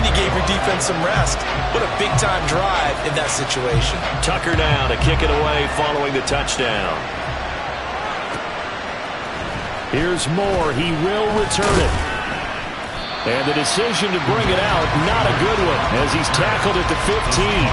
you gave your defense some rest. What a big-time drive in that situation. Tucker now to kick it away following the touchdown. Here's Moore. He will return it. And the decision to bring it out, not a good one, as he's tackled at the 15.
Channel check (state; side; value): identical; both; correlation 1.00